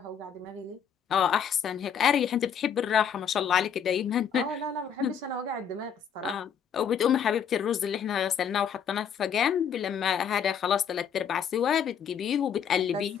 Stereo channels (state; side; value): quieter; right; 7.8 dB